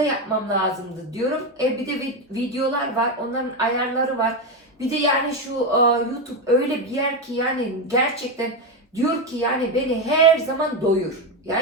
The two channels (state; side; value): normal; both; correlation 0.11